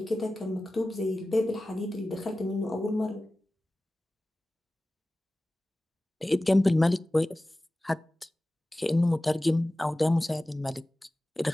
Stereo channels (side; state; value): both; normal; correlation 0.96